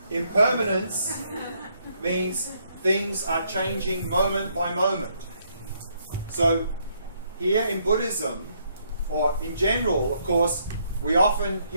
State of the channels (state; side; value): inverted; both; correlation -0.72